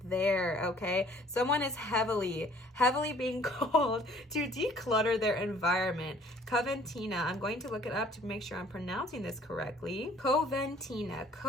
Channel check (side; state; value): both; normal; correlation 0.56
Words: there, okay? Someone is heavily being called to declutter their environment. Coventina, I'm going to look it up to make sure I'm pronouncing this correctly. Coventina,